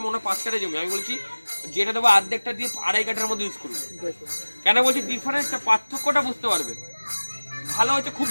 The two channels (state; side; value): inverted; both; correlation -1.00